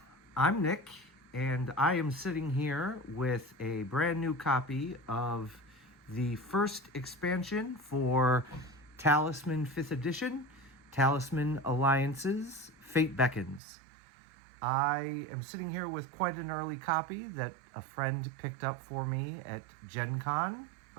I'm Nick, and I am sitting here with a brand new copy of the first expansion for Talisman 5th Edition, Talisman Alliances, Fate Beckons. I am sitting here with quite an early copy that a friend picked up for me at Gen Con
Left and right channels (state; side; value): drops out; left; at 13.6 s